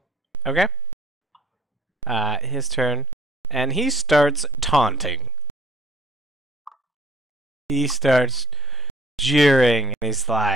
Okay. His turn. And he starts taunting. He starts jeering, and he's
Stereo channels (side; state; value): both; normal; correlation 0.74